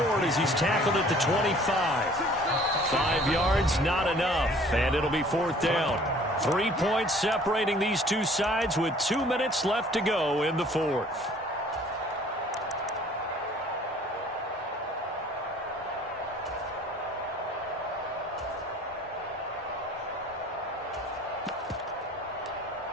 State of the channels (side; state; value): both; normal; correlation 0.53